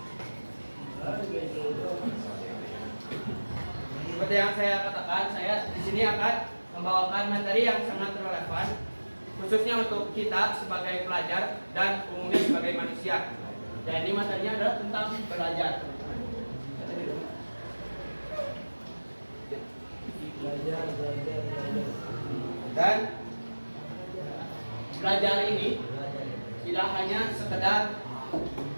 Seperti yang saya katakan, saya di sini akan membawakan materi yang sangat relevan, khususnya untuk kita sebagai pelajar dan umumnya sebagai manusia. Jadi materinya adalah tentang belajar. Dan belajar ini tidak hanya sekedar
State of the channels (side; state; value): both; inverted; correlation -1.00